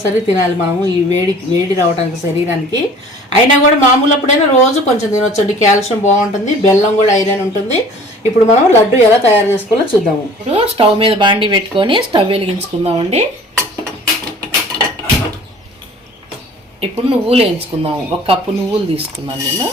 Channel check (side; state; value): both; normal; correlation 0.48